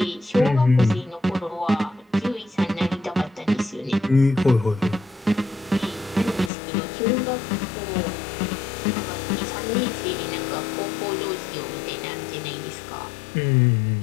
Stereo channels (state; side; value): drops out; right; at 6.5 s